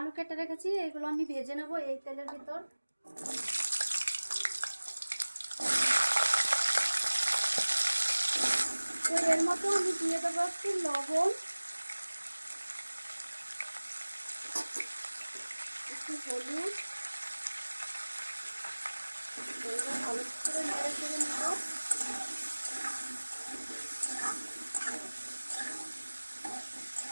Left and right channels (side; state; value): both; inverted; correlation -1.00